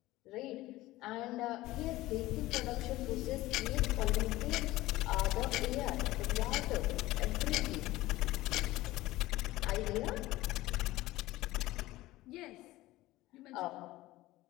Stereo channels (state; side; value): quieter; right; 17.6 dB